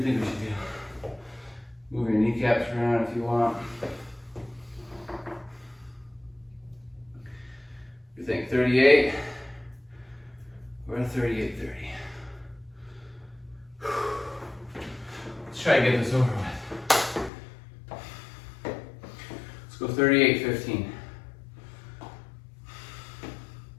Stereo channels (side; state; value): right; drops out; at 17.3 s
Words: think we should do? Move your kneecaps around if you want. You think 38 or 38:30? Let's try to get this over with. Go 38:15.